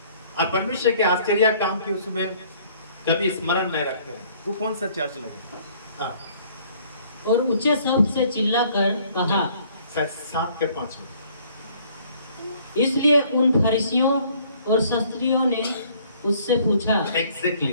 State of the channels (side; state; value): both; inverted; correlation -0.59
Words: और परमेश्वर के आश्चर्य काम की उसमें कभी स्मरण नहीं रखते हैं। वो कौन सा चर्च लगे? हाँ। और ऊंचे शब्द से चिल्लाकर कहा, 7 के 5 में। इसलिए उन फरीसियों और शास्त्रियों ने उससे पूछा।